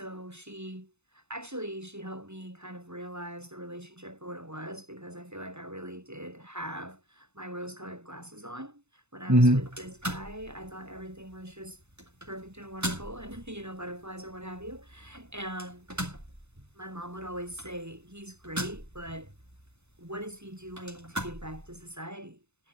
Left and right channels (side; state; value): left; late; 0.81 ms